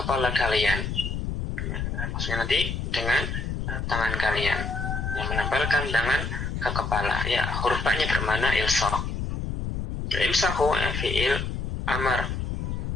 kalian, ya, maksudnya nanti dengan tangan kalian, yang menempelkan tangan ke kepala, ya, huruf ba-nya bermakna ilsaq. Ya, imsahu, ya, fi'il amar,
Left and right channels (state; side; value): noise; left; rumble, 3 dB below the sound